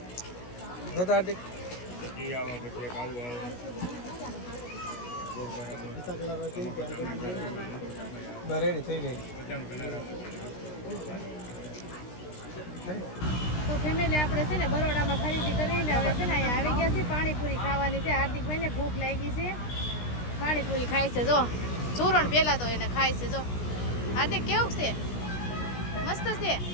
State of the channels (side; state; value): right; late; 16 ms